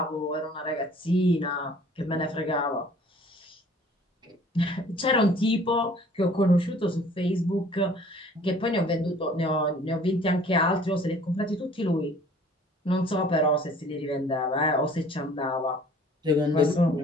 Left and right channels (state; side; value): normal; both; correlation 0.52